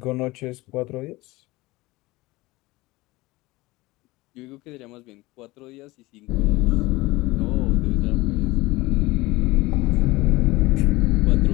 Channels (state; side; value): quieter; right; 20.6 dB